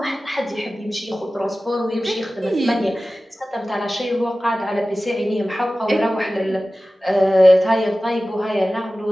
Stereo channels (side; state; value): both; normal; correlation 0.96